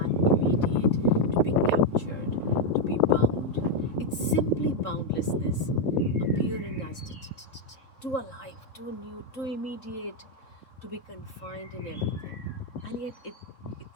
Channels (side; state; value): right; late; 3.7 ms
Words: immediate to be captured, to be bound. It's simply boundlessness appearing as too alive, too new, too immediate to be confined in everything. And yet it